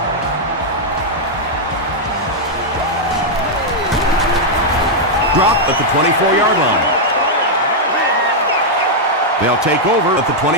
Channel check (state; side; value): normal; both; correlation -0.04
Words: Drop at the 24-yard line. They'll take over at the